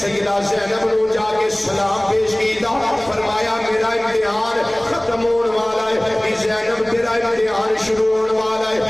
زینب نے جا کے سلام پیش کیتا، فرمایا میرا امتحان ختم ہونے والا ہے، زینب تیرا امتحان شروع ہونے والا ہے،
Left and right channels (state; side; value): noise; left; hum, 27 dB below the sound